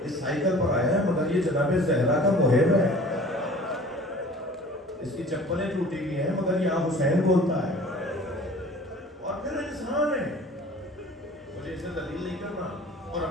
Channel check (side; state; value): both; normal; correlation 0.46